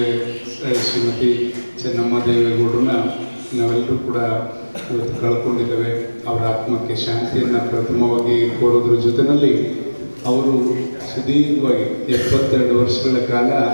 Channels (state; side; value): inverted; both; correlation -1.00